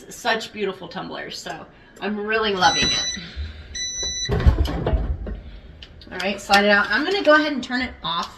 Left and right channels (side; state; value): both; identical; correlation 1.00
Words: such beautiful tumblers. So I'm really loving it. All right, slide it out. I'm gonna go ahead and turn it off